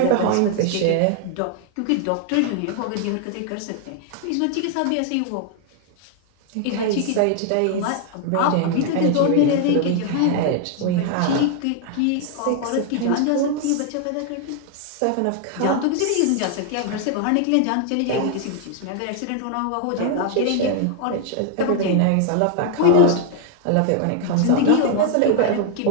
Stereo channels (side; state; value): both; different; correlation 0.00